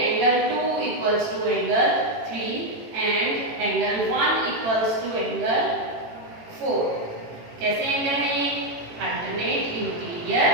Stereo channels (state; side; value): late; left; 18 ms